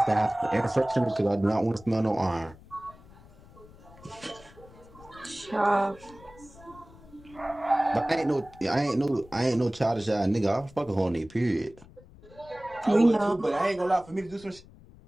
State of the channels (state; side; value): noise; left; rumble, 22 dB below the sound